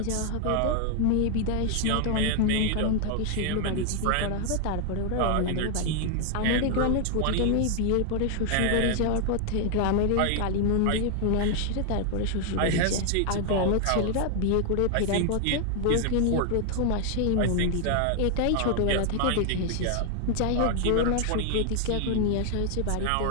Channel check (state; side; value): different; both; correlation 0.00